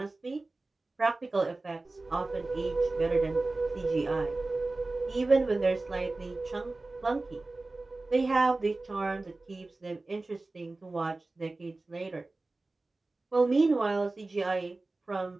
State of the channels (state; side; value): quieter; left; 3.2 dB